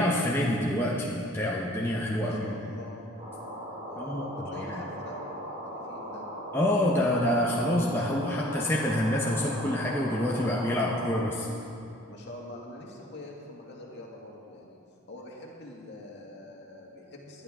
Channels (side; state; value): both; normal; correlation 0.54